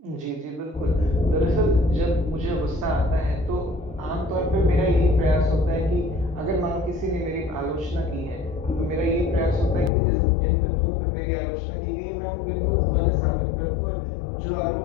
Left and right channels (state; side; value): drops out; right; at 9.9 s